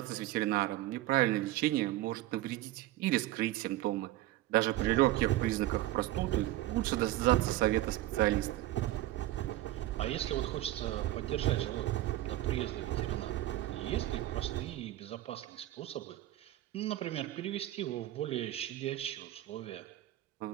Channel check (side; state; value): left; quieter; 15.4 dB